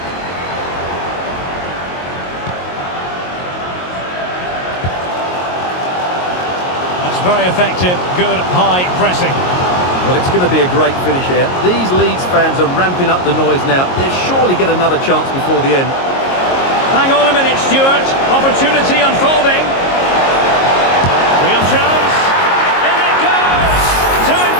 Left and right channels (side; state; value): right; late; 22 ms